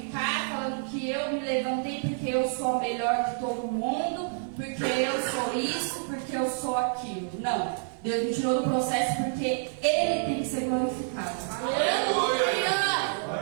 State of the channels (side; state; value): left; silent; digital silence